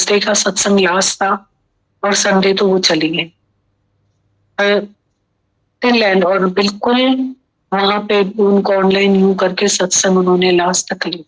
का सत्संग लास्ट था और संडे तो वो चली गई टिल एंड। और बिल्कुल वहां पे उनको ऑनलाइन यू करके सत्संग उन्होंने लास्ट तक ली।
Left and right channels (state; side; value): identical; both; correlation 1.00